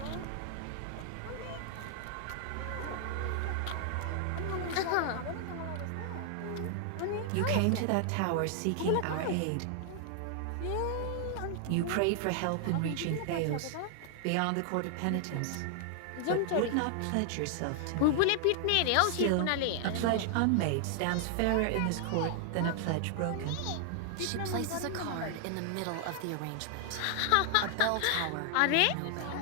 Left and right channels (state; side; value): different; both; correlation 0.00